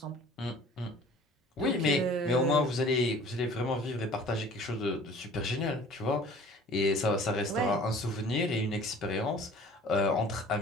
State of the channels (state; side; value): normal; both; correlation 0.48